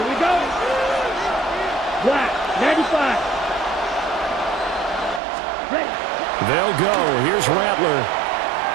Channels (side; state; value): left; drops out; at 5.2 s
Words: we go. Black, 95. Ready. They'll go. Here's Rattler.